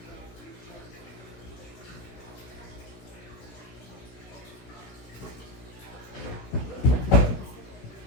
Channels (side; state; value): right; late; 16 ms